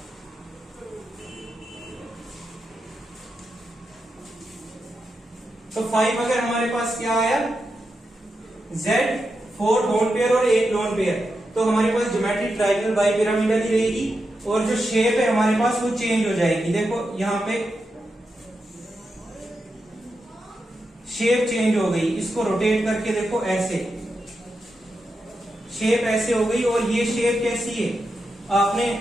तो 5 अगर हमारे पास क्या आया? Z4 बॉन्ड पेयर और 1 लोन पेयर, तो हमारे पास ज्योमेट्री ट्राइगोनल बाइपिरामिडल ही रहेगी, और जो शेप है हमारे पास वो चेंज हो जाएगी। देखो यहाँ पे शेप चेंज हो गई, इसको रोटेट करके देखो, ऐसे शेप ऐसे हो गई। और ये शेप कैसी है? आपने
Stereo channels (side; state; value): both; normal; correlation 0.87